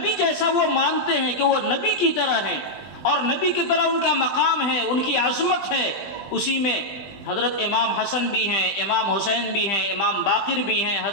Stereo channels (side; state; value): right; late; 20 ms